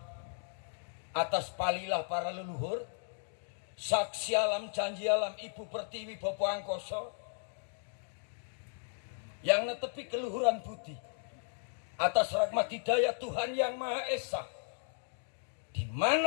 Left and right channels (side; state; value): right; silent; digital silence